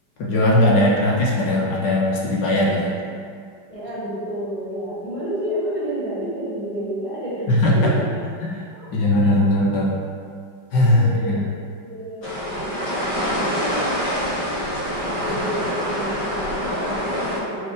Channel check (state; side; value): late; right; 5.1 ms